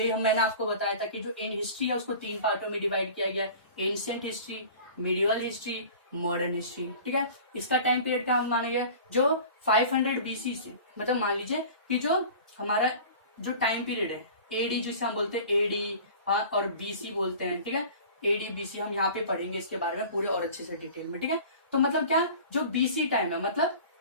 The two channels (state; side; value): inverted; both; correlation -0.41